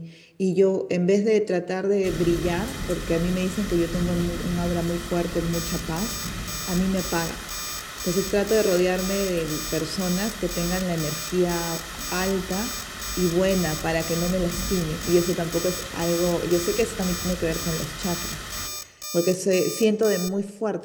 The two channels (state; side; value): identical; both; correlation 1.00